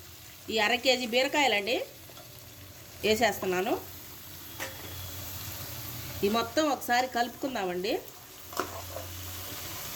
ఈ 1/2 కేజీ బీరకాయలండి వేసేస్తున్నాను. ఈ మొత్తం ఒకసారి కలుపుకుందామండి.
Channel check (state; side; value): identical; both; correlation 1.00